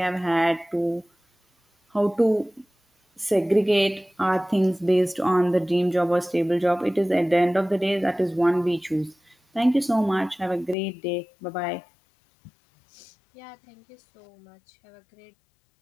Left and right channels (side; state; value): right; drops out; at 10.8 s